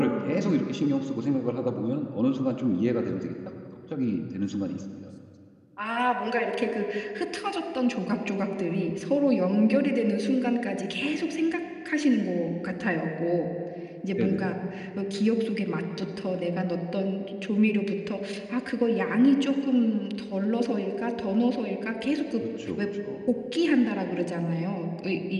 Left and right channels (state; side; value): identical; both; correlation 1.00